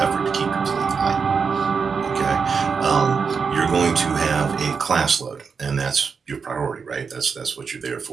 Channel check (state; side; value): quieter; left; 5.6 dB